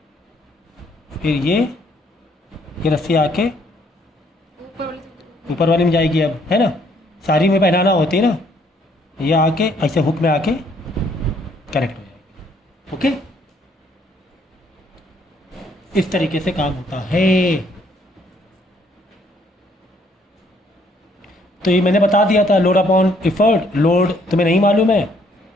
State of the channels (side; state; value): both; normal; correlation 0.66